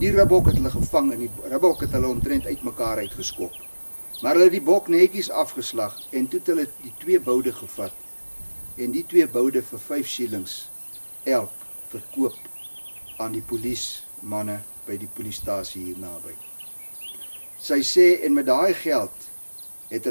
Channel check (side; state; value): both; inverted; correlation -1.00